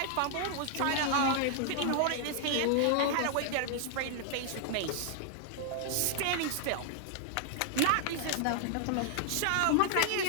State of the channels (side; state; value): both; different; correlation 0.00